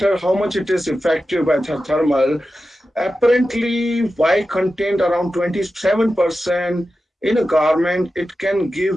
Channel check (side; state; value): both; normal; correlation 0.92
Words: how much it is effective by the thermal. Apparently, white content around 27%. In a garment, it can